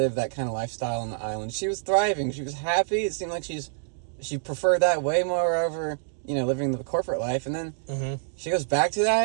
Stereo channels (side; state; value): left; silent; digital silence